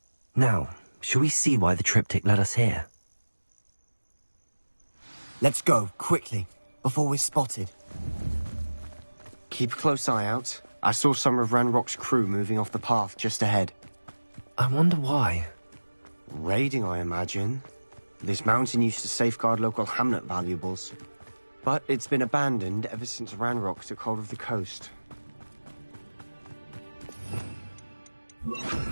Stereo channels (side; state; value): both; inverted; correlation -1.00